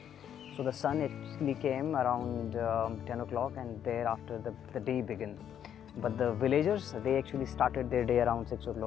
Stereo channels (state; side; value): quieter; right; 9.5 dB